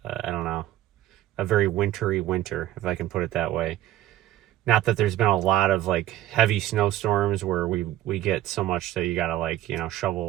I don't know, a very wintry winter, if I can put it that way. Not that there's been a lot of like heavy snowstorms where we get so much that you gotta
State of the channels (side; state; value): left; quieter; 13.7 dB